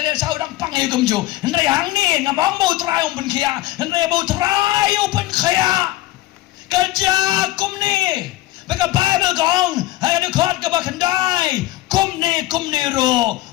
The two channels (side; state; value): right; quieter; 16.9 dB